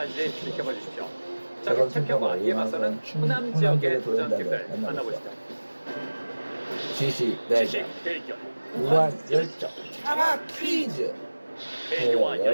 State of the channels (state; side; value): inverted; both; correlation -1.00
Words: 지켜봐 주십시오. 자, 그럼 챔피언과 이에 맞서는 호남 지역의 도전팀들 만나보시죠. 지식 대결, 무한 열정 장학 퀴즈.